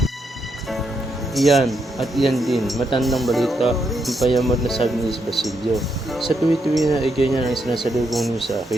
Iyan at iyan din, matandang balita ang payamot na sabi ni Basilio. Sa tuwi-tuwi na ay ganyan ang sinasalubong niyo sa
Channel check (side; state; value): both; normal; correlation 0.79